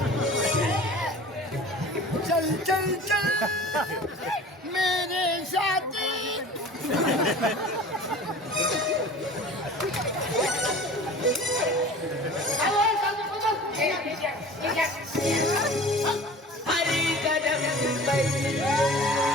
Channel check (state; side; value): normal; both; correlation 0.42